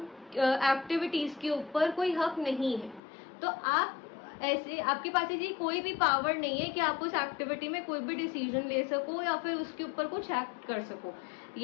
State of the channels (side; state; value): right; drops out; at 3.0 s